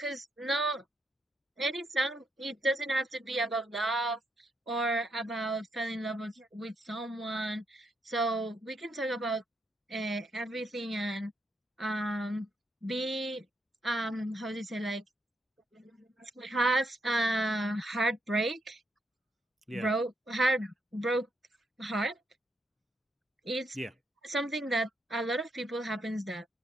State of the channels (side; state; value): both; normal; correlation 0.77